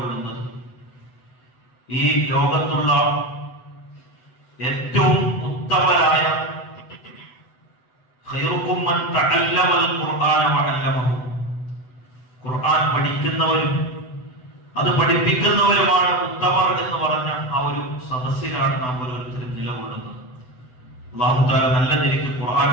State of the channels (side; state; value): right; late; 7.9 ms